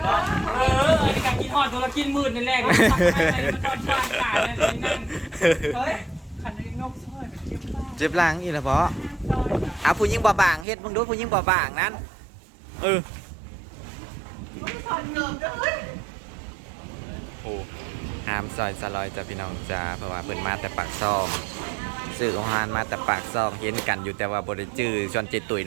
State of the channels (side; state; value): left; drops out; at 10.7 s